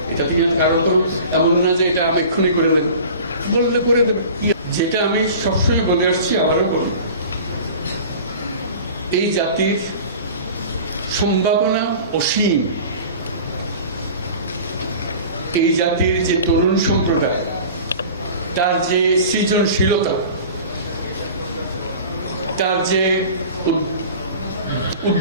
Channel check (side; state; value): both; inverted; correlation -0.40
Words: এটা তুমি কারণ তো এমন না যে এটা আমি এক্ষুনি করে দেবো, বললে করে দেবো। যেটা আমি সবসময় বলে আসছি, আবারও বলি, এই জাতির সম্ভাবনা অসীম। এই জাতির যে তরুণ সম্প্রদায়, তার যে সৃজনশীলতা, তার যে